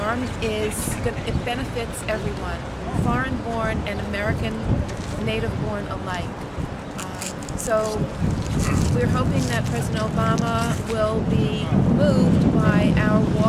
it benefits everyone, foreign-born and American native-born alike. So we're hoping that President Obama will be moved by our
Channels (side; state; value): both; identical; correlation 1.00